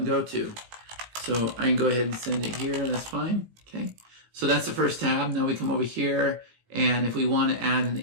go to? So I can go ahead and send it here, that's fine, okay? So that's the first tab. Now we come over here, and if we want to add an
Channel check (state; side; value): late; left; 17 ms